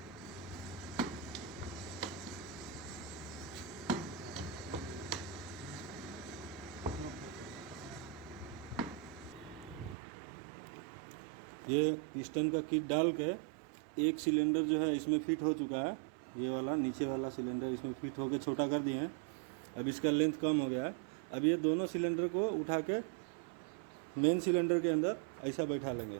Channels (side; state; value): left; drops out; at 10.0 s